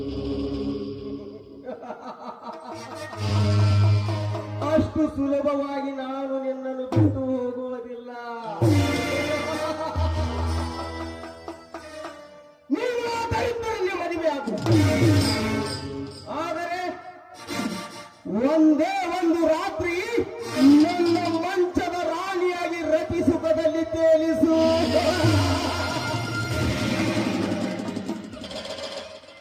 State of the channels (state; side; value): identical; both; correlation 1.00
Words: ಅಷ್ಟು ಸುಲಭವಾಗಿ ನಾನು ನಿನ್ನನ್ನು ಬಿಟ್ಟು ಹೋಗುವುದಿಲ್ಲ. ನೀನು ದರಿದ್ರರಿಗೆ ಮದುವೆ ಆಗು. ಆದರೆ ಒಂದೇ ಒಂದು ರಾತ್ರಿ ನನ್ನ ಮಂಚದ ರಾಣಿಯಾಗಿ ರತಿ ಸುಖದಲ್ಲಿ ತೇಲಿಸು.